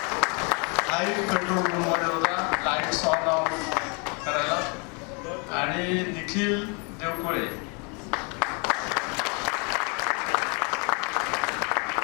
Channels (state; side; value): quieter; right; 33.9 dB